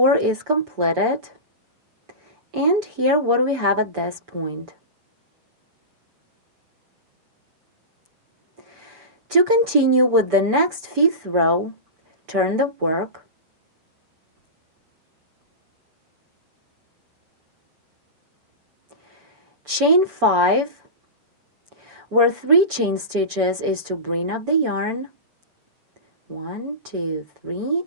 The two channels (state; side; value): late; left; 6.8 ms